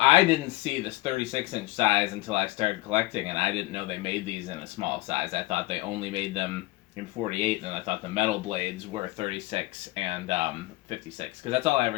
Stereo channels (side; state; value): right; quieter; 20.6 dB